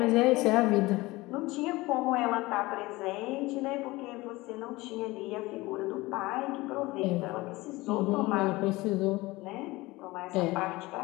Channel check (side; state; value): right; quieter; 20.7 dB